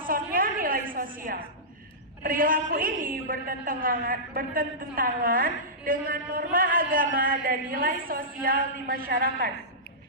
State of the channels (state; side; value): normal; both; correlation -0.16